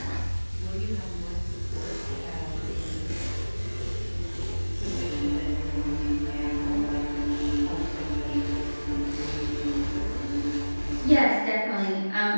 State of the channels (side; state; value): both; inverted; correlation -1.00